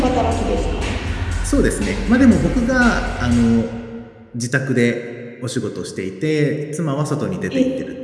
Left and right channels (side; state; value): both; identical; correlation 1.00